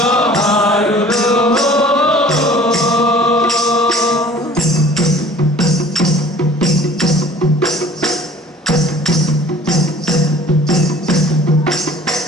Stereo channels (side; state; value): both; normal; correlation 0.48